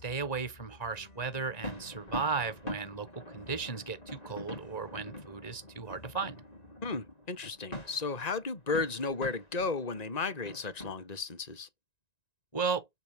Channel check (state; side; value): late; right; 1.9 ms